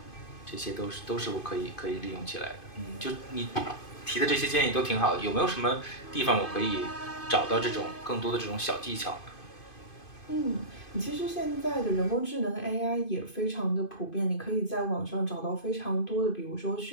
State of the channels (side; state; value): right; late; 2.5 ms